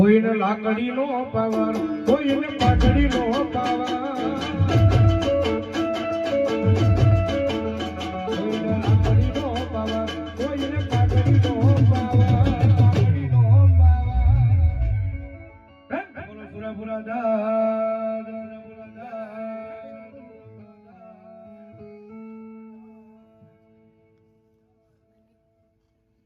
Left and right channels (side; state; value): both; identical; correlation 1.00